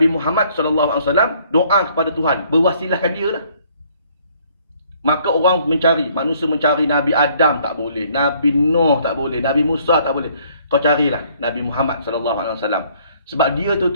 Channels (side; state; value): both; inverted; correlation -0.63